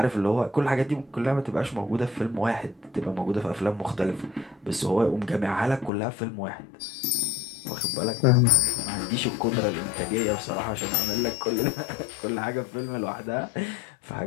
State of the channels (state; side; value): drops out; right; at 5.9 s